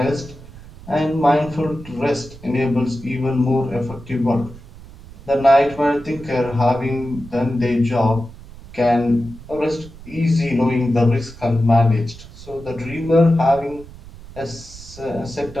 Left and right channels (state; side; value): noise; right; rumble, 18 dB below the sound